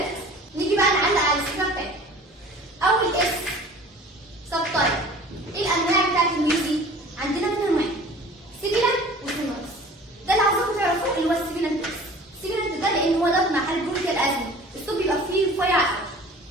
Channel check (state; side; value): normal; both; correlation 0.45